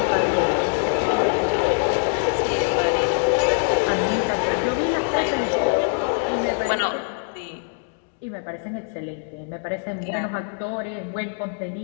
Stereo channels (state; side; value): silent; right; 58 dB below the other